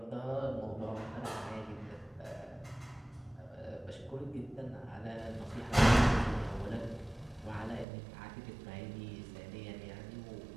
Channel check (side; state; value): left; drops out; at 7.9 s